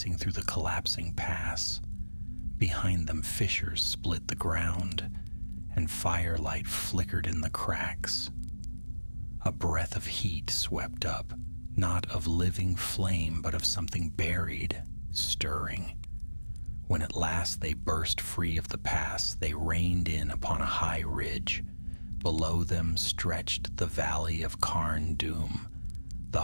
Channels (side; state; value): both; inverted; correlation -1.00